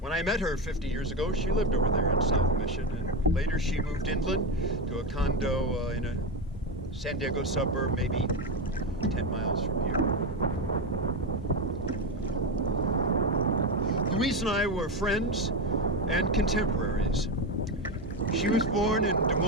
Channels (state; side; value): normal; both; correlation 0.13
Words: When I met her 50 years ago, she lived over there in South Mission, and later she moved inland to a condo in a San Diego suburb, maybe 10 miles from here. Louise and I were friends and contemporaries. She was born in Des